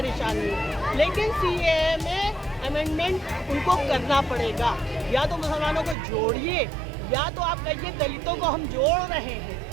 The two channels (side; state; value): left; drops out; at 6.0 s